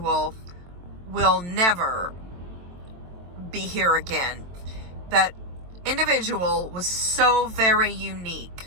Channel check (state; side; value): late; left; 23 ms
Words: will never be here again. That individual was so very